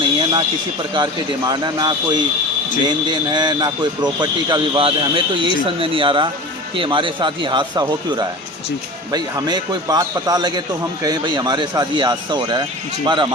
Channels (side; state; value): both; normal; correlation 0.34